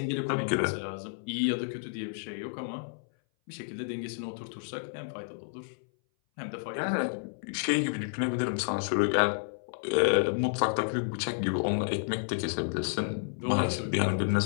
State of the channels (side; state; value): right; silent; 57 dB below the other